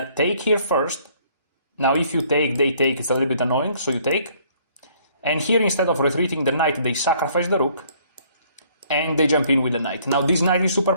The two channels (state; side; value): inverted; both; correlation -0.61